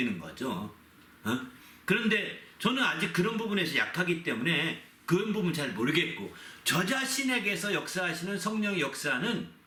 거죠. 그런데 저는 아직 그런 부분에서 약하기 때문에 그런 부분 잘 모르겠고, 저 자신에게서 역사하시는 성령의 역사는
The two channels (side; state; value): both; identical; correlation 1.00